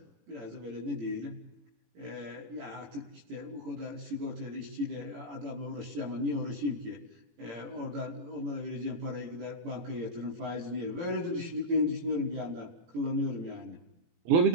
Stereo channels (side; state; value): left; late; 17 ms